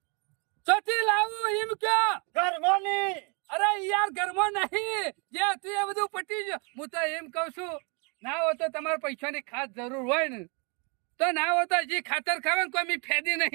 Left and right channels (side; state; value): left; quieter; 33.8 dB